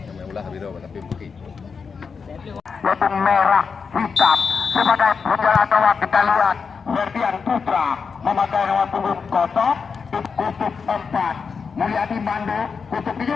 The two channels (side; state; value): right; quieter; 5.6 dB